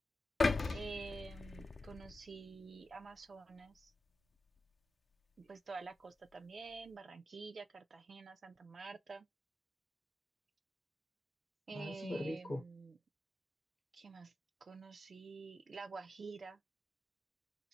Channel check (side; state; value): both; normal; correlation 0.92